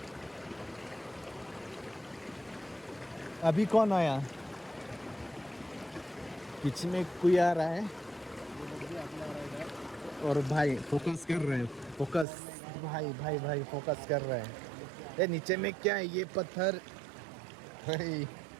अभी कौन आया पीछे में कोई आ रहा है और भाई फोकस कर रहे हैं फोकस भाई फोकस कर रहे हैं ये नीचे में क्या है ये पत्थर भाई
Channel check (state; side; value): drops out; left; at 12.2 s